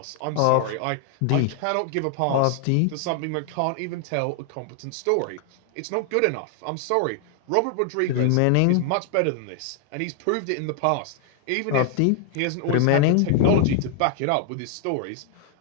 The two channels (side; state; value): both; different; correlation 0.00